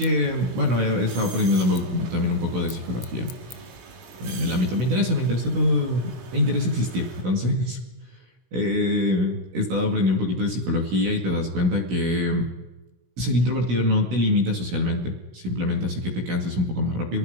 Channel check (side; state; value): left; late; 16 ms